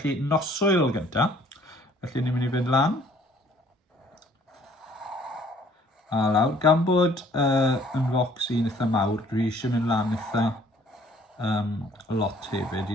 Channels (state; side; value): normal; both; correlation 0.58